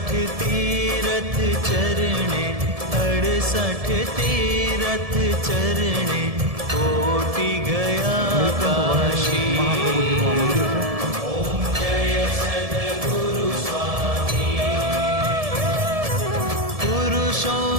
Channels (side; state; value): left; late; 1.7 ms